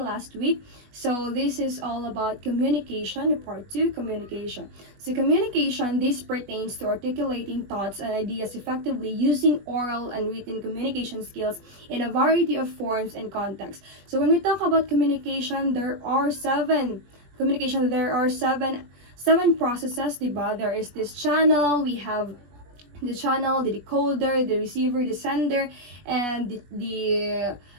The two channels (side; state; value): left; late; 21 ms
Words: last week. So this is all about communication, part 2, communication. So communication, this pertains to articulating thoughts and ideas effectively using oral and written communication skills in a variety of forms and contexts. So when we talk about communication, there are seven processes, diba? There is this channel, we have the channel, the decoder, the receiver, the sender, and the